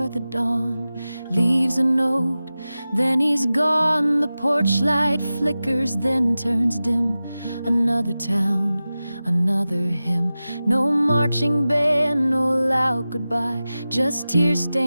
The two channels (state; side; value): inverted; both; correlation -0.95